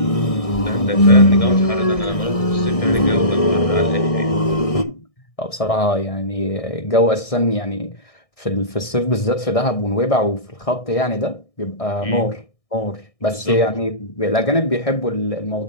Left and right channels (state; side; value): late; right; 1.6 ms